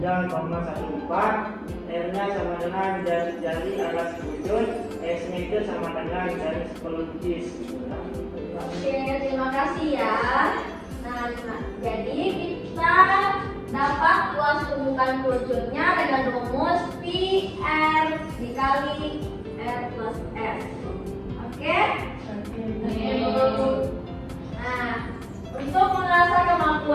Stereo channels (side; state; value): both; identical; correlation 1.00